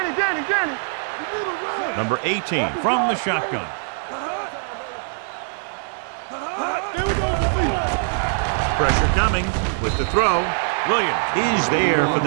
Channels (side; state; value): left; silent; digital silence